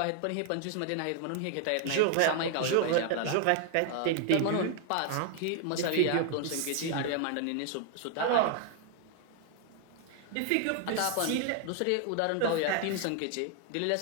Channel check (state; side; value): different; both; correlation 0.00